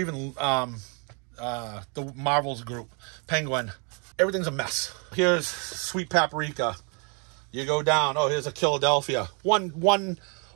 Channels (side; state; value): left; quieter; 36.0 dB